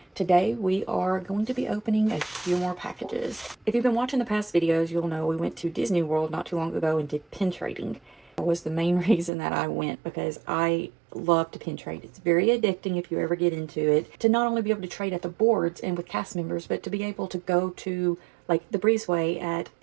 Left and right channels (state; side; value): drops out; left; at 9.3 s